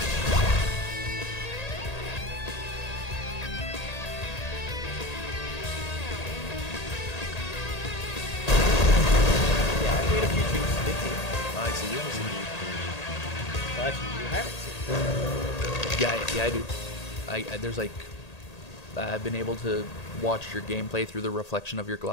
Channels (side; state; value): right; late; 1.8 ms